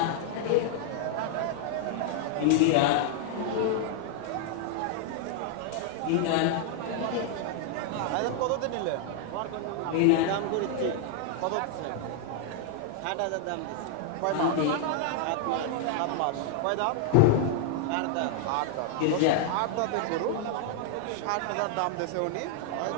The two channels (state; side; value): different; both; correlation 0.00